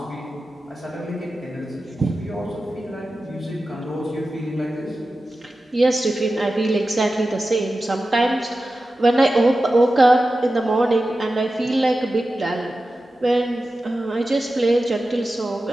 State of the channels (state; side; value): normal; both; correlation 0.93